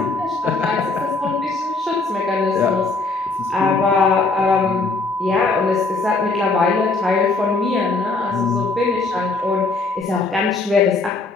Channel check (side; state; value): right; quieter; 3.7 dB